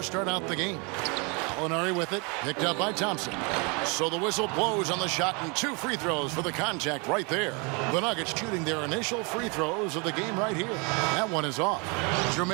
start out the game. Gallinari with it, picked up by Thompson. So the whistle blows on the shot and 2 free throws for the contact right there. The Nuggets shooting their initial free throws of the game right here. That one is off.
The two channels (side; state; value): left; quieter; 31.6 dB